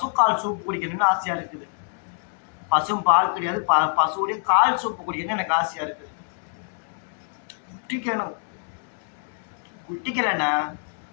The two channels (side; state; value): right; silent; digital silence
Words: சூப் குடிக்கணும்னு ஆசையா இருக்குது. பசும் பால் கிடையாது, பசுவுடைய கால் சூப்பு குடிக்கணும்னு எனக்கு ஆசையா இருக்குது. குட்டிக்கணும், குட்டிக்கலண்ணா